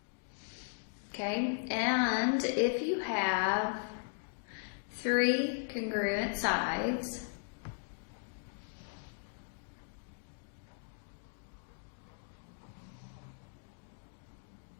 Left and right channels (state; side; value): silent; right; digital silence